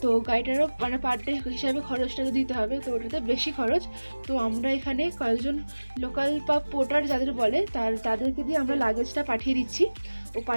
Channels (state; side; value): inverted; both; correlation -1.00